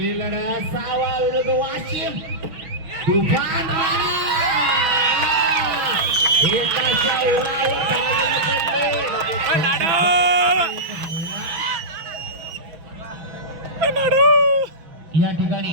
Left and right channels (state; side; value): late; left; 6.1 ms